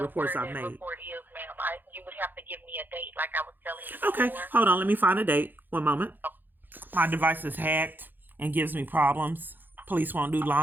I've made. Report is, ma'am. You would have to give me a date, like I was telling you. Okay, before. Hold on. Let me find a date. One moment. My device is hacked and gives me problems. Police won't do law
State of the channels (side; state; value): left; late; 0.090 ms